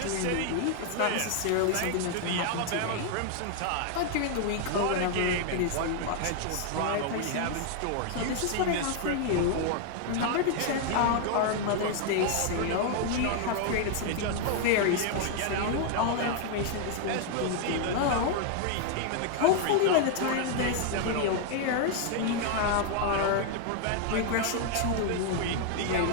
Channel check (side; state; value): both; different; correlation 0.00